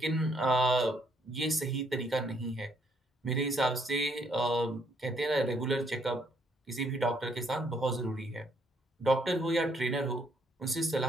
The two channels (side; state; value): both; normal; correlation 0.69